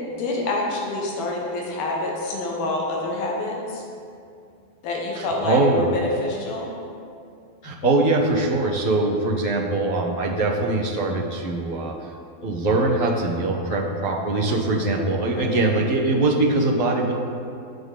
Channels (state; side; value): late; right; 12 ms